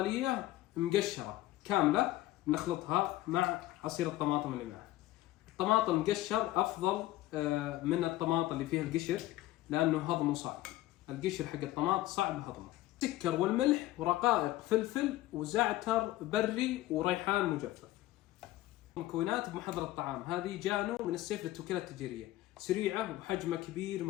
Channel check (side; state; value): right; quieter; 16.3 dB